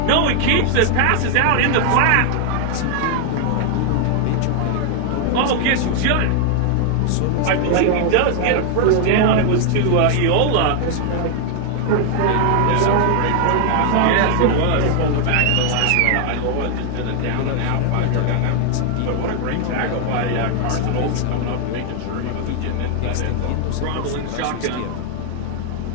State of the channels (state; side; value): different; both; correlation 0.00